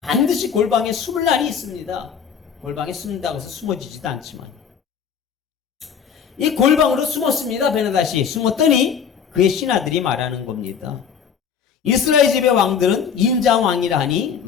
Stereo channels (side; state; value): right; quieter; 7.3 dB